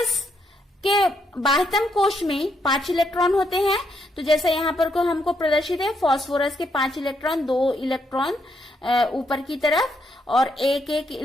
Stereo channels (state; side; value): normal; both; correlation 0.76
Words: के बाह्यतम कोश में 5 इलेक्ट्रॉन होते हैं। तो जैसा यहाँ पर को हमको प्रदर्शित है, फास्फोरस के 5 इलेक्ट्रॉन, 2 इलेक्ट्रॉन ऊपर की तरफ और एक एक